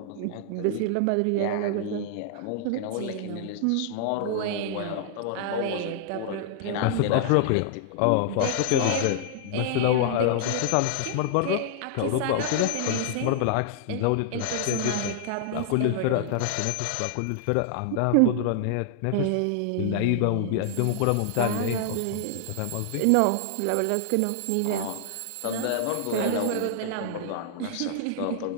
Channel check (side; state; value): both; different; correlation -0.01